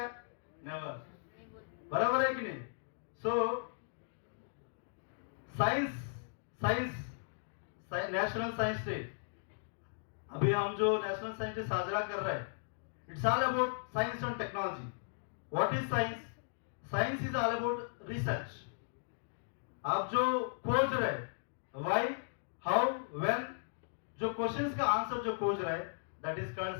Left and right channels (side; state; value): right; silent; digital silence